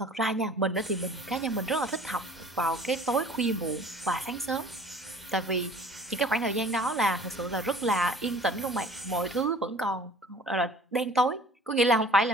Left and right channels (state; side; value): normal; both; correlation 0.48